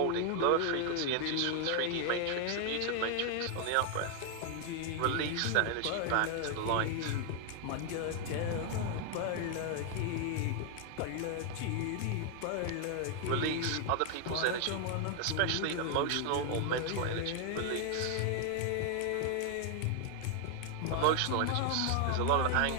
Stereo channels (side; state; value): both; different; correlation 0.00